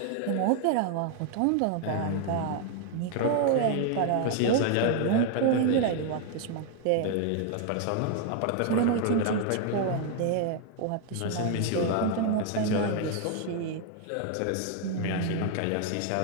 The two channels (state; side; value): different; both; correlation 0.00